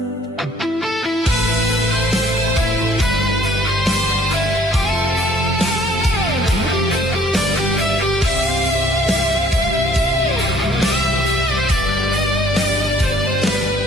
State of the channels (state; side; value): normal; both; correlation 0.59